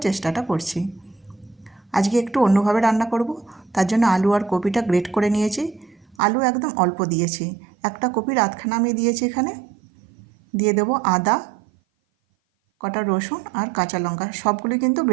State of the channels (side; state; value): left; drops out; at 6.2 s